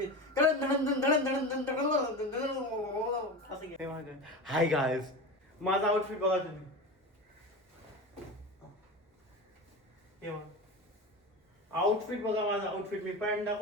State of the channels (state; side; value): normal; both; correlation 0.26